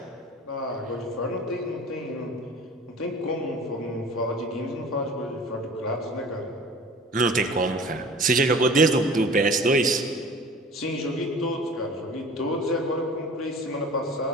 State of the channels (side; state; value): both; normal; correlation 0.43